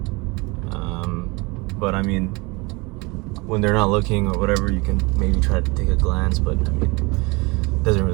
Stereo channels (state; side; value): quieter; left; 26.3 dB